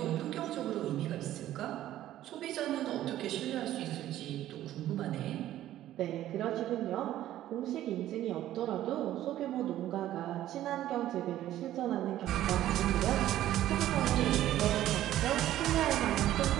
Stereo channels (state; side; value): quieter; left; 13.3 dB